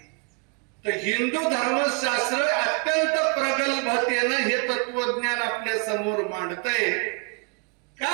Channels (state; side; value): quieter; left; 35.8 dB